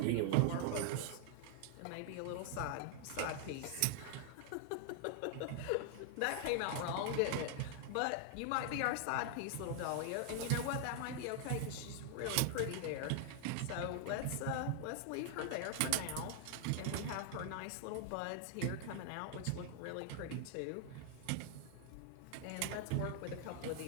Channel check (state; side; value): different; both; correlation 0.00